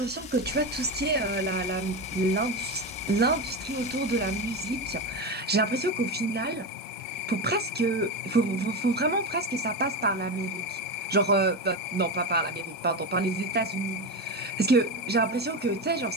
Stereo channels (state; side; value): normal; both; correlation 0.17